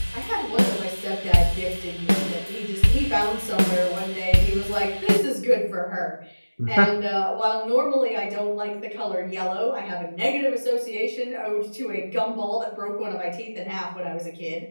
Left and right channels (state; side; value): inverted; both; correlation -1.00